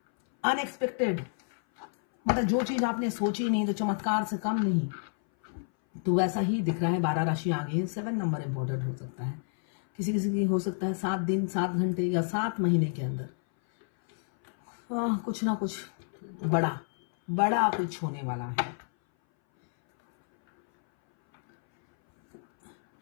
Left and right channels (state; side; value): silent; right; 58 dB below the other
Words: अनएक्सपेक्टेड, मतलब जो चीज आपने सोची नहीं तो चमत्कार से कम नहीं। तो वैसा ही दिख रहा है। 12 राशि आ गई है। 7 नंबर इंपॉर्टेंट हो सकता है, किसी किसी की हो सकता है 7 दिन 7 घंटे या 7 महीने के अंदर कुछ ना कुछ बड़ा कुछ होने वाला है।